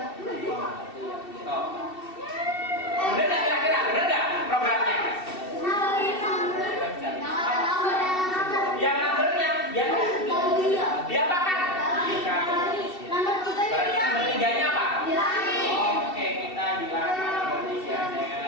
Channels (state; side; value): late; right; 2.7 ms